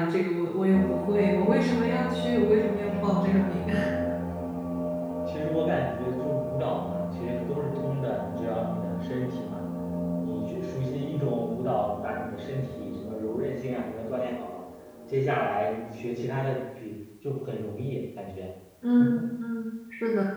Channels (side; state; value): both; identical; correlation 1.00